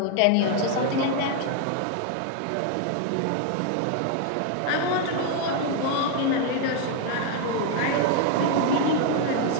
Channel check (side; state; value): both; different; correlation 0.00